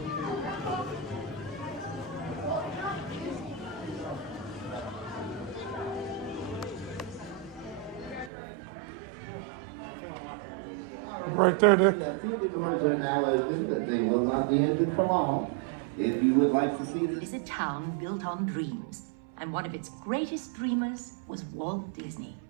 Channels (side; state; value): left; drops out; at 8.3 s